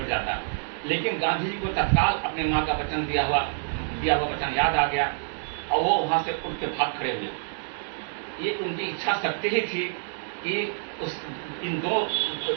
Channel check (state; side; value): silent; left; 60 dB below the other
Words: जाता। लेकिन गांधी जी को तत्काल अपनी माँ का वचन दिया हुआ वचन याद आ गया, और वो वहां से उठ के भाग खड़े हुए। ये उनकी इच्छा शक्ति ही थी कि इन 2